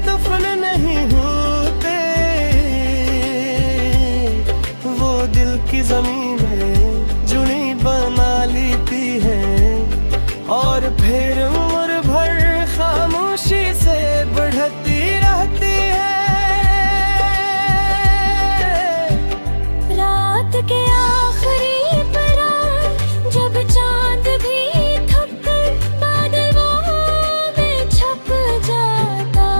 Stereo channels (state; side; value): inverted; both; correlation -1.00